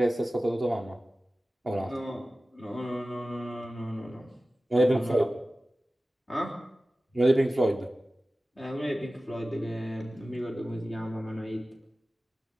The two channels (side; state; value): both; normal; correlation 0.96